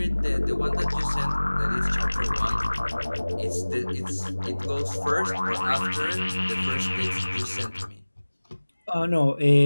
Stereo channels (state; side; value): inverted; both; correlation -1.00